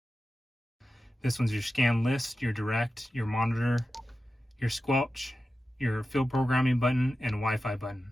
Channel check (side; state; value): both; normal; correlation 0.93